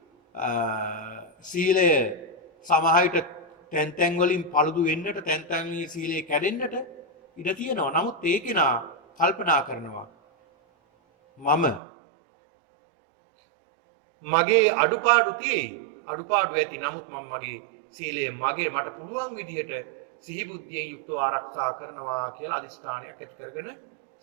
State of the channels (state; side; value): drops out; left; at 11.8 s